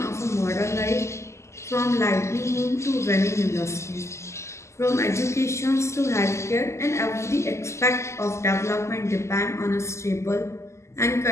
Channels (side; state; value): right; late; 0.13 ms